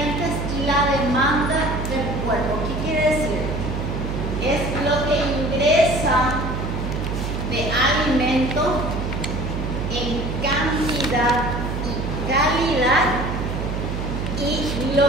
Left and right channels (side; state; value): right; noise; hum, 3 dB below the sound